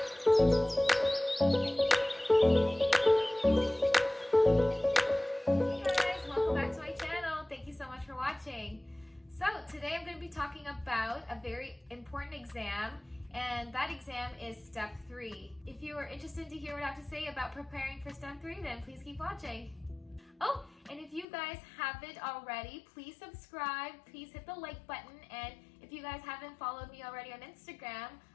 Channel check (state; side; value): drops out; right; at 21.2 s